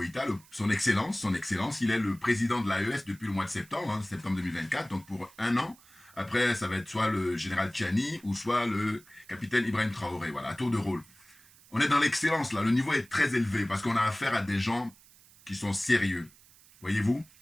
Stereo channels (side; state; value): right; noise; hiss, 26 dB below the sound